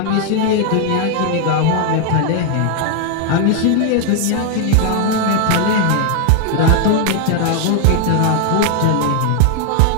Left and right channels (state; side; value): different; both; correlation 0.00